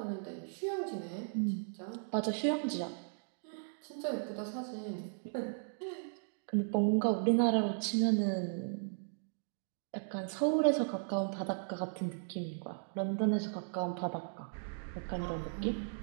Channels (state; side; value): silent; left; digital silence